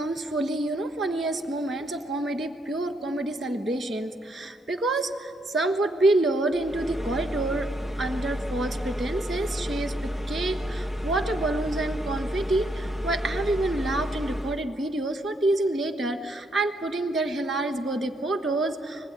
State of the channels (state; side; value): normal; both; correlation 0.75